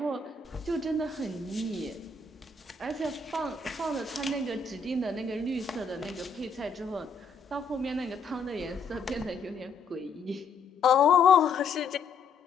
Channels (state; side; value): quieter; right; 4.7 dB